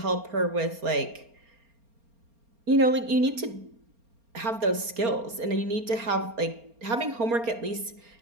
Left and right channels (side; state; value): left; late; 4.3 ms